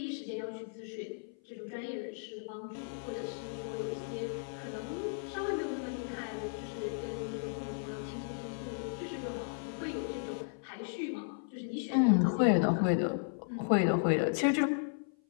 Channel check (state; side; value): silent; right; 54 dB below the other